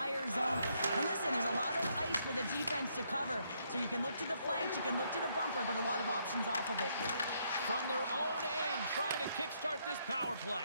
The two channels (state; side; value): inverted; both; correlation -0.73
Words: zone. And listen, there's a lot of ice for the defense to cover, so you can look to the flanks, you can look to the bumper, but a lot of options off of it. From their own end, trying to kickstart this power